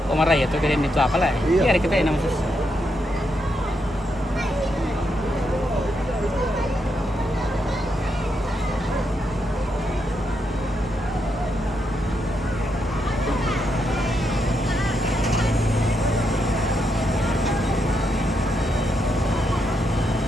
Marah ya tuh kalian itu apa lah? Iya kita yang namanya.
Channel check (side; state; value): both; normal; correlation 0.81